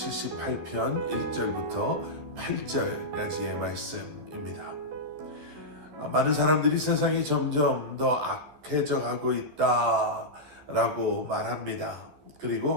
1절부터 8절까지의 말씀입니다. 많은 사람들이 세상이 점점 더 악해져 가고 있다라고 말합니다.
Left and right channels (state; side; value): late; left; 13 ms